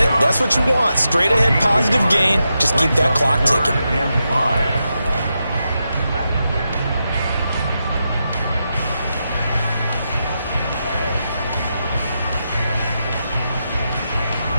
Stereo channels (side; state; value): both; inverted; correlation -0.86